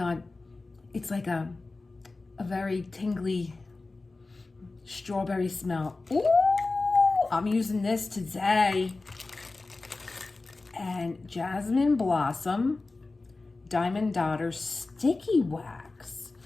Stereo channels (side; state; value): right; quieter; 3.5 dB